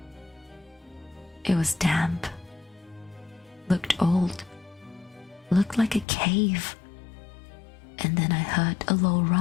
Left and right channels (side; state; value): right; drops out; at 6.1 s